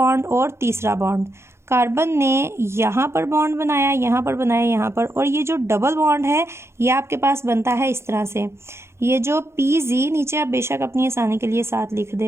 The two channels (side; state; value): left; late; 0.13 ms